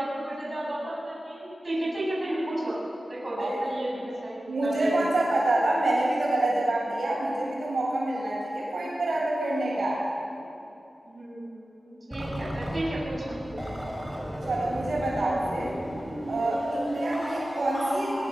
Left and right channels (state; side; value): normal; both; correlation 0.94